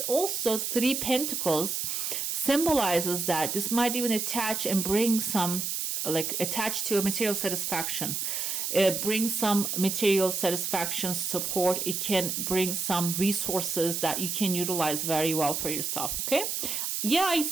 also, Three Pentacles symbolizes that this might even attach and bring some, like attached to a material satisfaction. It brings some material satisfaction, support. It can bring some resources that you can utilize very well for yourself. Okay. Yeah, I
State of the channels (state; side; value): noise; right; hiss, 2 dB below the sound